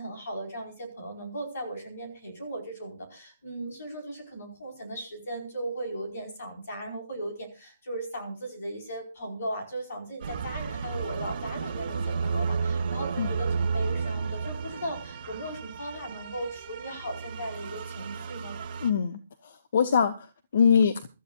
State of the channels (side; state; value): both; inverted; correlation -0.74